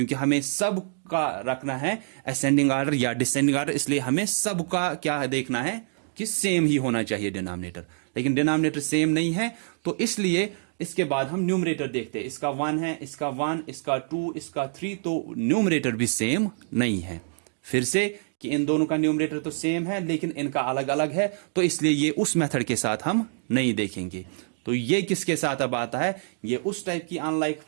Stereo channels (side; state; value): left; silent; digital silence